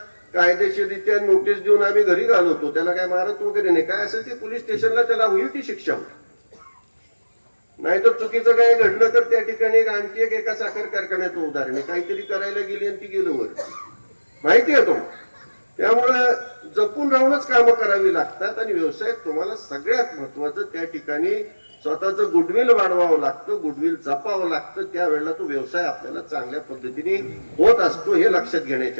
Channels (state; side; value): inverted; both; correlation -1.00